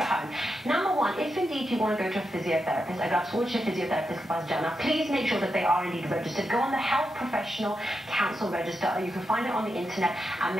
home. Number 1, if indeed you want to go to a physiotherapist, अगर आप सोच रहे physiotherapist के पास जाना, please make sure that they are indeed registered. Go on the Health Professional Council register, or you can find it on the internet, and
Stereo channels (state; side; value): normal; both; correlation 0.86